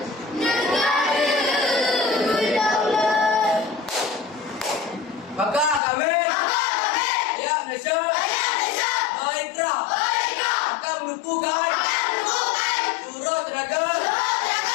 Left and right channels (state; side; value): drops out; right; at 5.8 s